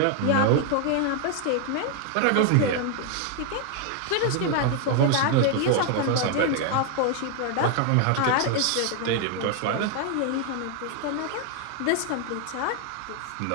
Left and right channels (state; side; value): different; both; correlation 0.00